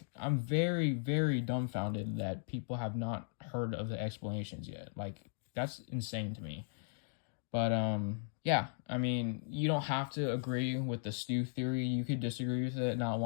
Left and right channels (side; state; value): right; silent; digital silence